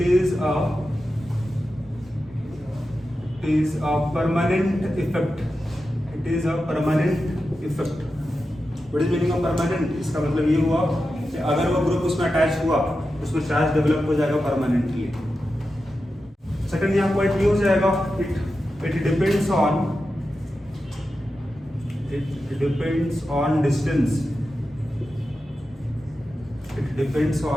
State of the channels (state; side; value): normal; both; correlation 0.91